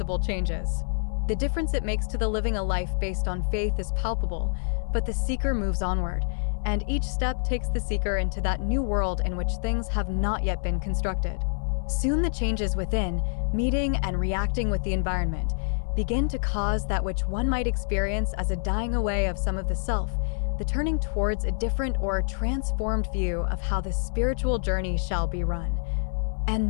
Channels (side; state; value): right; silent; digital silence